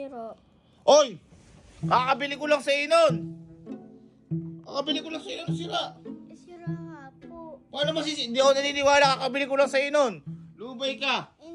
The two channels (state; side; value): identical; both; correlation 1.00